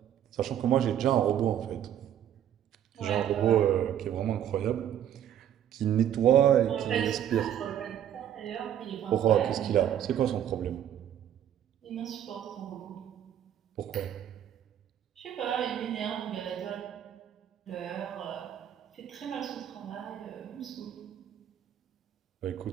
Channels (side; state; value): left; quieter; 10.3 dB